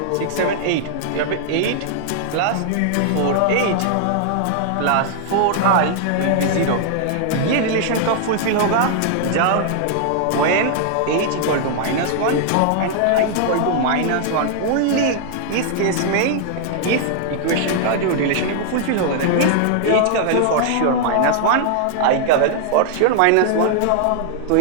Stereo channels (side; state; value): both; different; correlation -0.01